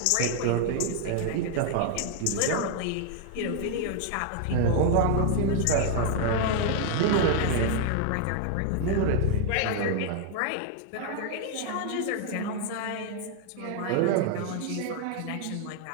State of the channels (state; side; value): different; both; correlation 0.00